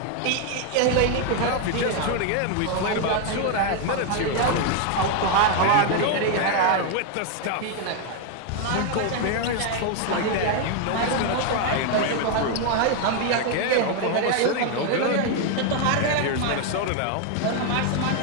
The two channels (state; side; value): different; both; correlation 0.01